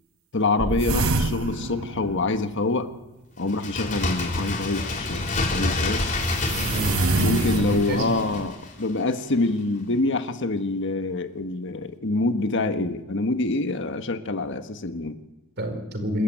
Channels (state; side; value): normal; both; correlation 0.34